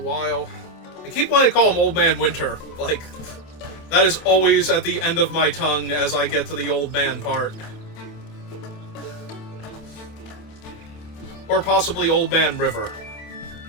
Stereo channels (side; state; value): right; late; 27 ms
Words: I keep wanting to call him Old Man Winter. Like, that is always at the end of my tongue as I get to the Old Man part. Or possibly Old Man River.